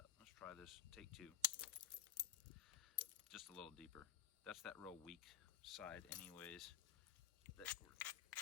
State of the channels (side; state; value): right; quieter; 12.2 dB